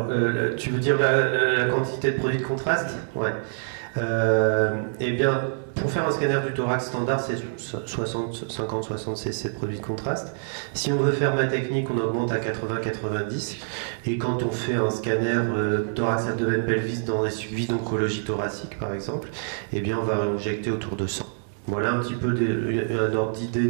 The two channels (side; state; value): left; silent; digital silence